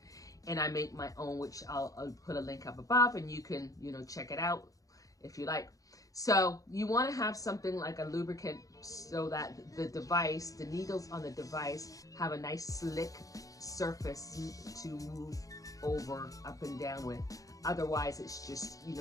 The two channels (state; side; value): late; right; 0.17 ms